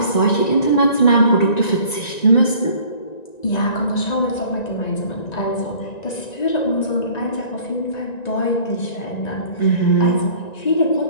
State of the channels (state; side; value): late; right; 1.9 ms